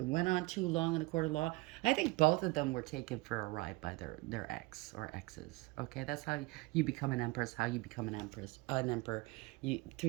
on too long in a court of law. I think both of them were taken for a ride by their ex or exes. Okay, that's how you become an empress. How you become an emperor. Through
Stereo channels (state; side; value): quieter; left; 22.5 dB